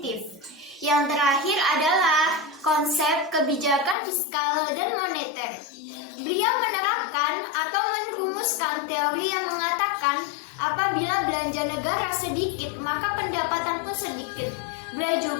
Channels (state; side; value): drops out; right; at 4.0 s